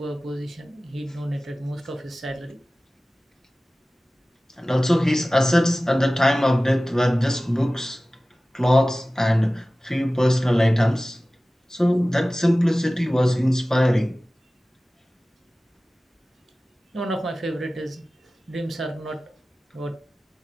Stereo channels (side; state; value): both; normal; correlation 0.97